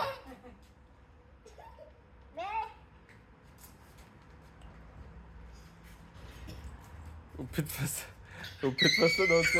Опитва се да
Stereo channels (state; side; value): identical; both; correlation 1.00